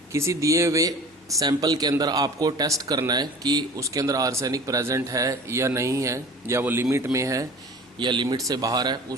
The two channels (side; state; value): both; normal; correlation 0.42